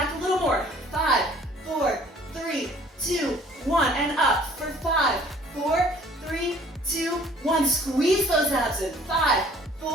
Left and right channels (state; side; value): normal; both; correlation 0.55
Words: a little more. 5, 4, 3, 2, 1. And up for 5, 4, 3, 2, 1. Squeeze those abs in. 5,